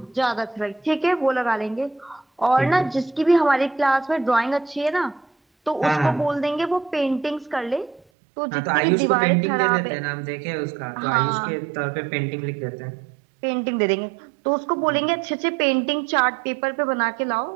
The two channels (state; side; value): drops out; left; at 8.0 s